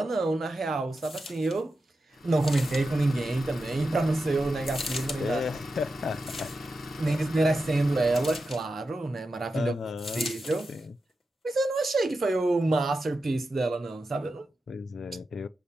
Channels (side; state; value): both; normal; correlation 0.90